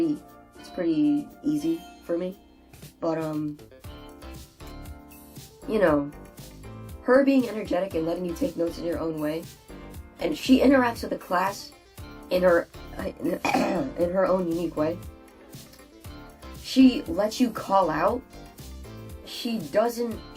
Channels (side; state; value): both; identical; correlation 1.00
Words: easy for me. But, you know, her being energetic and letting you take notes in your own way, and she interacts with the class in her own unique way. She lets you call out. She's